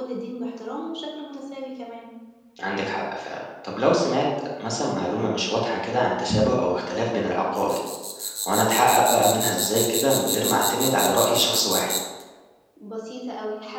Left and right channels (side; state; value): both; identical; correlation 1.00